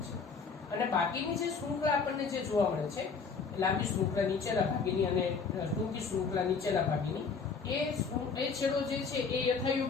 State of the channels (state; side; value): quieter; right; 5.2 dB